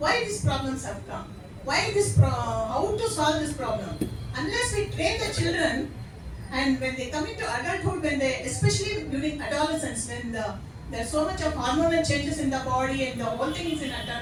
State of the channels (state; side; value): identical; both; correlation 1.00